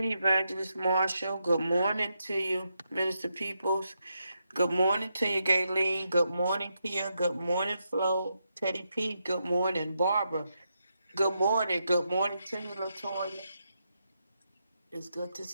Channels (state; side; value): inverted; both; correlation -0.84